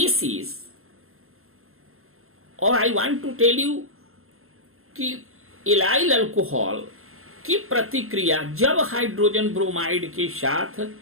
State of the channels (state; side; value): late; left; 0.61 ms